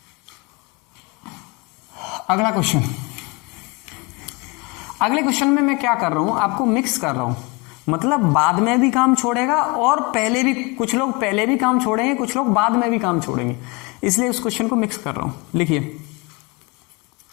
अगला क्वेश्चन। अगले क्वेश्चन में मैं क्या कर रहा हूं, आपको मिक्स कर रहा हूं, मतलब बाद में भी काम छोड़ेगा और पहले भी, कुछ लोग पहले भी काम छोड़ेंगे, कुछ लोग बाद में भी काम छोड़ेंगे, इसलिए उस क्वेश्चन को मिक्स कर रहा हूं। लिखिए,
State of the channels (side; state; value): right; quieter; 28.2 dB